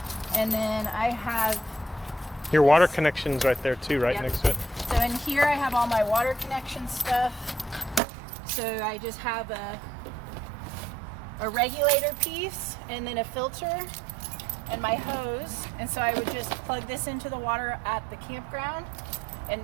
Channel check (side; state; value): left; drops out; at 8.0 s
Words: And then I have your water connection's right there too, right? Yep. Next to it. So in here I have all my water connection stuff. So I just have a regulator piece and then a filter and my hose. And so I would just plug this into the water at the campground, and